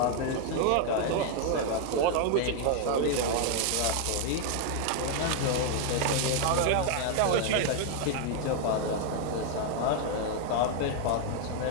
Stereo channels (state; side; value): different; both; correlation 0.00